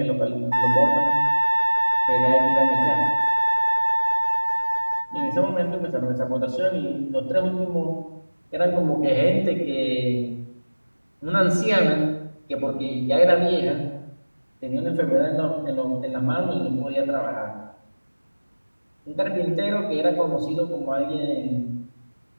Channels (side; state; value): both; inverted; correlation -1.00